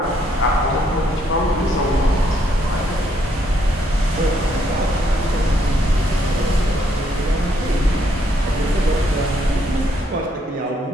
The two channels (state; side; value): normal; both; correlation 0.72